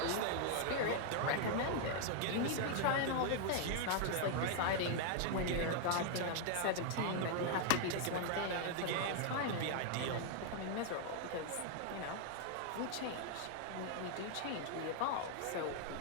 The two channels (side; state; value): both; different; correlation 0.00